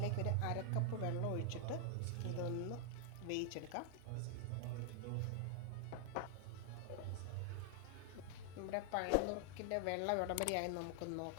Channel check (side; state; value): both; different; correlation 0.00